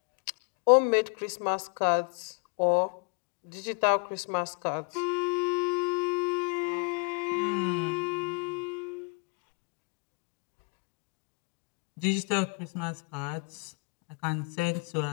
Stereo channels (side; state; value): right; quieter; 33.9 dB